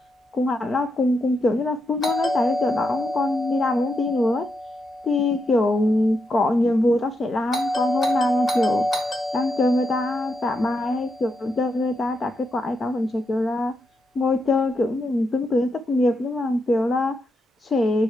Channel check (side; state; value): both; normal; correlation 0.83